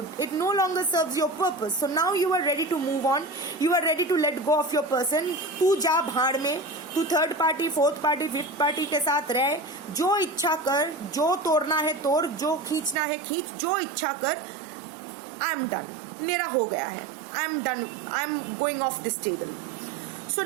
It no longer serves your purpose. So now you are ready to move on. You are ready to let go of your person. तू जा भाड़ में, तू third party, fourth party, fifth party के साथ रह, जो इच्छा कर, जो तोड़ना है तोड़, जो खींचना है खींच, जो इच्छा कर. I am done. मेरा हो गया है. I am done. I am going off this table. So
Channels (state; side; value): drops out; left; at 13.0 s